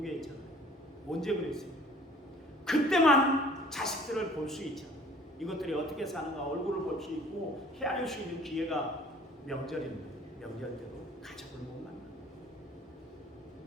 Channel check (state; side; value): normal; both; correlation 0.52